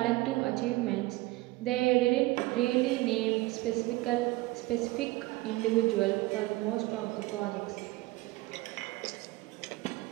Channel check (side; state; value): left; quieter; 20.2 dB